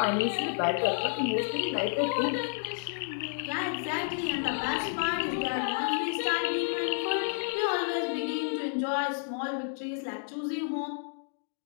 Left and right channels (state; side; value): silent; right; digital silence